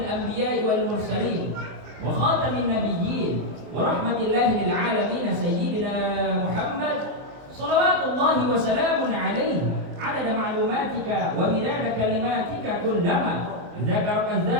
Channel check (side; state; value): left; late; 24 ms